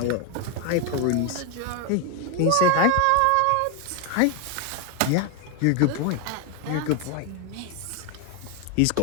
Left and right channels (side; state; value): both; different; correlation 0.01